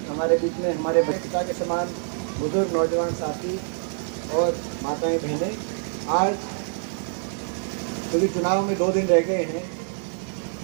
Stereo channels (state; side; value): silent; left; 58 dB below the other